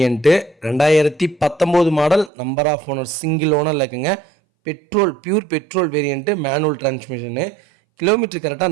2019 model, number of owner single ஓனரில் இருக்குங்க. Pure petrol variant, manual transmission. Kilometre கரெக்டாக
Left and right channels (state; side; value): drops out; left; at 2.3 s